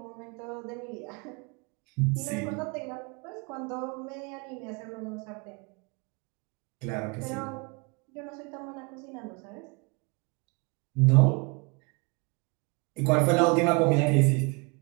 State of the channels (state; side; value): quieter; left; 30.5 dB